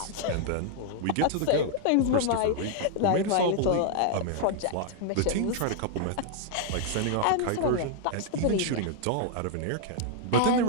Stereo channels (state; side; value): different; both; correlation 0.00